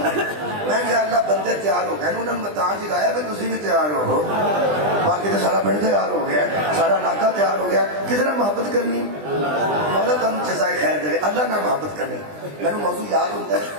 ہی۔ میں کہ اللہ بندے تیار ہو گئے انہوں نے میں تاں جگایا بھی تسی بھی تیار ہو، باقی تو سارا پنڈ تیار ہو گیا، سارا علاقہ تیار ہو گیا۔ کس طرح محبت کرنی؟ مولا تم جزائے خیر دے، اللہ نہ محبت کرنی۔ میں موضوع یاد ہوتا ہے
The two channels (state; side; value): late; left; 20 ms